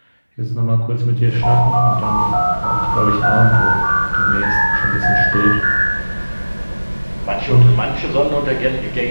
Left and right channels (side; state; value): both; inverted; correlation -1.00